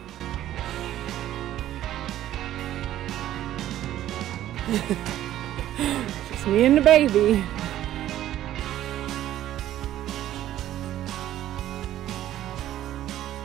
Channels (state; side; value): quieter; left; 12.8 dB